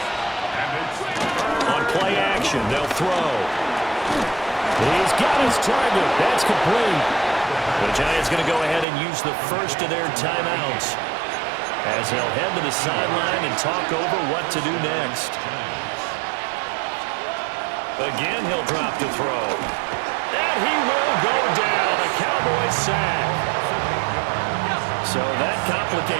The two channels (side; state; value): left; drops out; at 8.8 s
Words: On play action, they'll throw. He's got his target. That's complete. The Giants going to go ahead and use the first of their timeouts as they'll head to the sideline and talk over what to do next. Again, he'll drop to throw. And he will go down. A Cowboys sack. So that